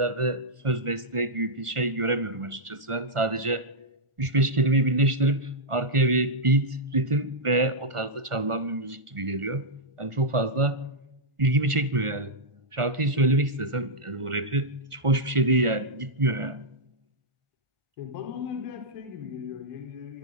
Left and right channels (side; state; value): left; late; 1.4 ms